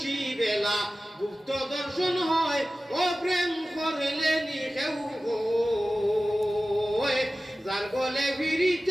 বেলা গুপ্ত দর্শন হয় ও প্রেম করলে নিখেউ হয় যার গলে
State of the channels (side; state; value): both; normal; correlation 0.96